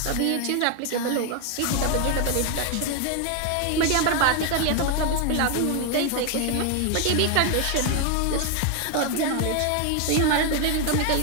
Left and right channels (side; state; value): both; different; correlation 0.01